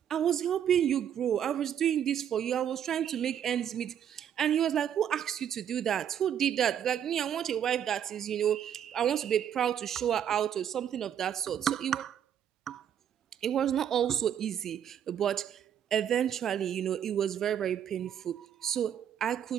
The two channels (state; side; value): quieter; left; 9.4 dB